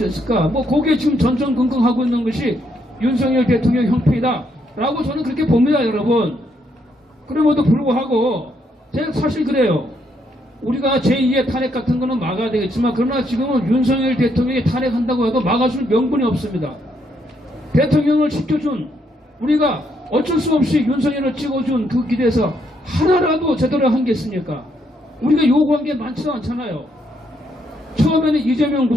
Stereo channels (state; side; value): normal; both; correlation 0.74